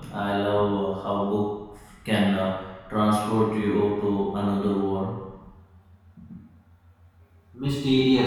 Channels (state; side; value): identical; both; correlation 1.00